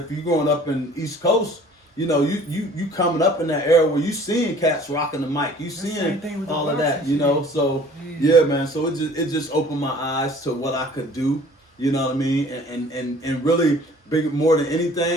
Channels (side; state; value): both; normal; correlation 0.51